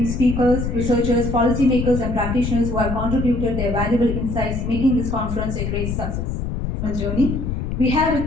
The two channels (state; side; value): noise; left; rumble, 3 dB below the sound